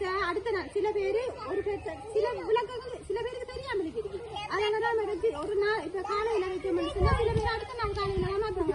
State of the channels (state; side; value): identical; both; correlation 1.00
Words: அடுத்த நாள் சில பேரு ஒரு பேச்ச சில விளக்கங்கள் சில பேருக்கு தெரியாம இருக்கு. அதனால நாம ஒரு நாள் இப்ப காலையில வைக்க சில பேர் அடுத்த நாள் காலையில மாத்தோம்.